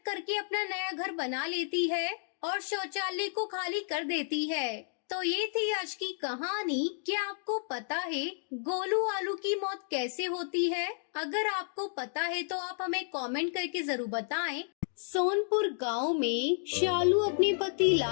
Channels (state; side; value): silent; right; digital silence